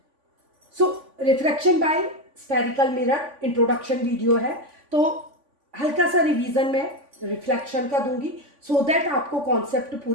So refraction by spherical mirror introduction video है, तो हल्का सा रिवीजन में रिफ्लेक्शन का दूंगी सो दैट आपको कॉन्सेप्ट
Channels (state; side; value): late; left; 3.5 ms